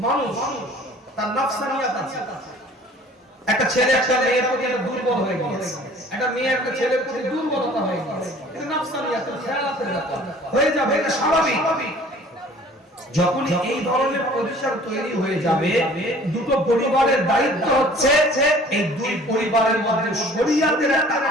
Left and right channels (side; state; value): both; normal; correlation 0.50